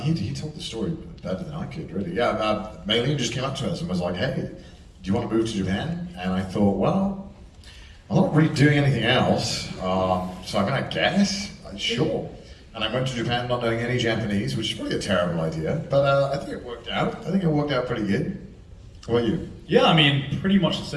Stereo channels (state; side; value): identical; both; correlation 1.00